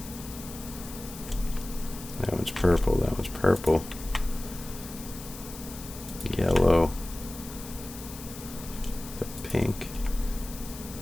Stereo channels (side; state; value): left; noise; hiss, 13 dB below the sound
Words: That one's purple, that one's purple. Yellow. The pink.